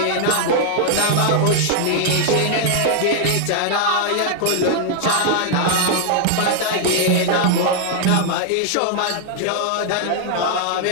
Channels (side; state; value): both; different; correlation 0.00